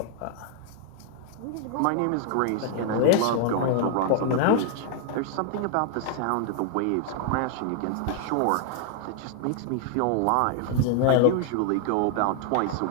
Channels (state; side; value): different; both; correlation 0.00